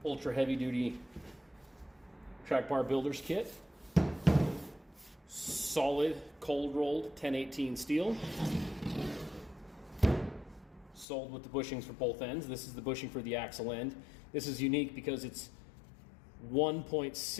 ultra heavy duty track bar builder's kit. Solid cold rolled 1018 steel. Sold with the bushings for both ends. This is the bushing for the axle end. This is unique because it's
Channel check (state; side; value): drops out; right; at 11.1 s